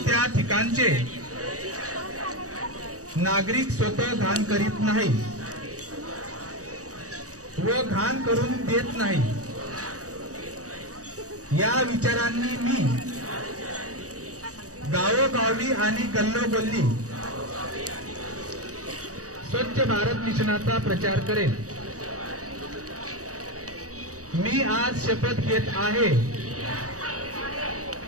ठिकाणचे नागरिक स्वतः घाण करीत नाही व घाण करून देत नाही। या विचारांनी मी गावोगावी आणि गल्लोगल्ली स्वच्छ भारत मिशनाचा प्रचार करेन। मी आज शपथ घेत आहे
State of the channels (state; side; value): late; left; 0.66 ms